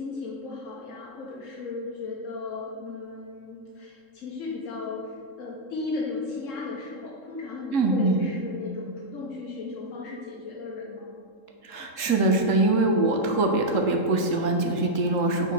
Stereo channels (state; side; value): late; right; 3.7 ms